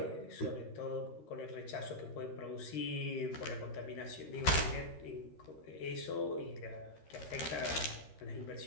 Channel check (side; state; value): right; late; 13 ms